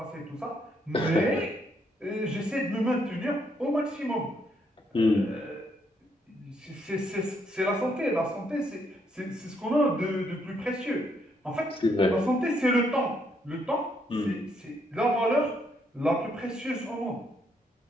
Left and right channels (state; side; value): normal; both; correlation 0.73